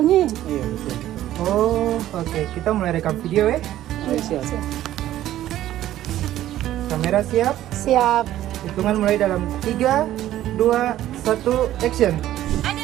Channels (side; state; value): left; quieter; 13.3 dB